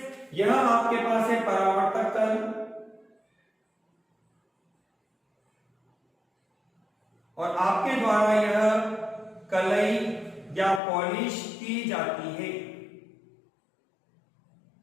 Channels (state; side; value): drops out; right; at 10.8 s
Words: यह आपके पास है परावर्तक तल और आपके द्वारा यह कलई या पॉलिश की जाती है।